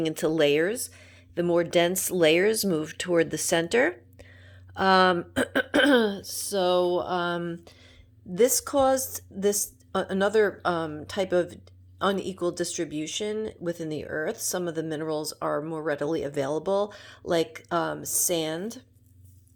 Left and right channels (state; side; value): identical; both; correlation 1.00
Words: into layers. The more dense layers moved toward the center. So this caused another type of unequal distribution within the earth. Some of the minerals are more readily available, like sand